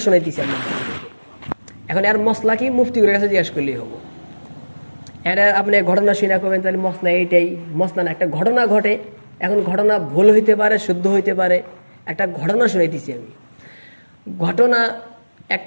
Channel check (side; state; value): both; inverted; correlation -1.00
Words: শোনাইতেছি আপনার। এখন আর মশলা কি মুফতির কাছে জিজ্ঞাসা করলেই হবো। এটা আপনি ঘটনা শুনে করবেন, তাহলে মশলা এইটাই, মশলা না, একটা ঘটনা ঘটে। এখন ঘটনা ভুল হইতে পারে, শুদ্ধ হইতে পারে, একটা ঘটনা শুনাইতেছি আমি। ঘটনা,